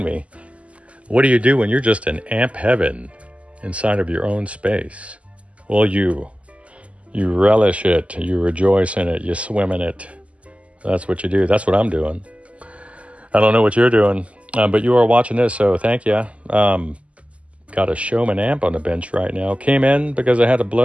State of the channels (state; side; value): late; left; 0.063 ms